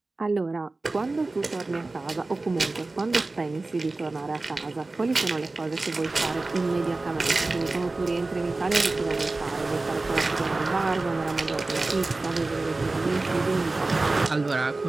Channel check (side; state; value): left; quieter; 3.3 dB